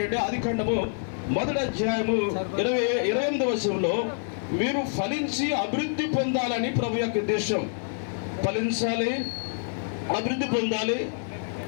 ఆదికాండము 1వ అధ్యాయము 28వ వచనంలో మీరు ఫలించి అభివృద్ధి పొందాలని ప్రభు యొక్క ఉద్దేశం. ఫలించాలి, అభివృద్ధి పొందాలి.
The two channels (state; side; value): silent; right; 60 dB below the other